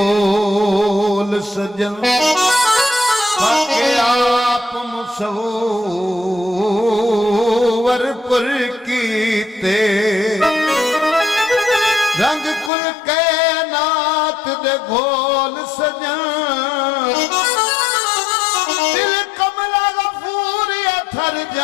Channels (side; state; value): right; drops out; at 12.7 s